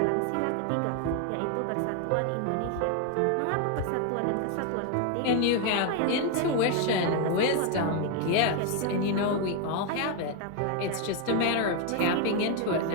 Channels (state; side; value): different; both; correlation 0.01